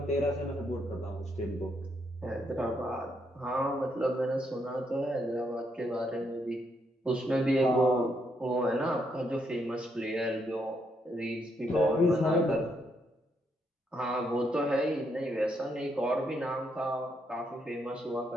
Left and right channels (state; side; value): normal; both; correlation 0.76